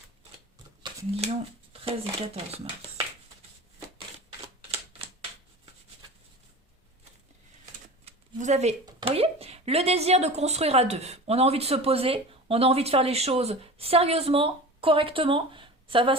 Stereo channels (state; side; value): normal; both; correlation 0.34